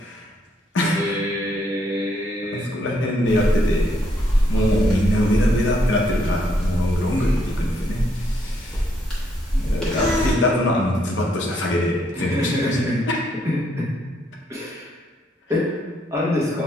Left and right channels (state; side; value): normal; both; correlation 0.73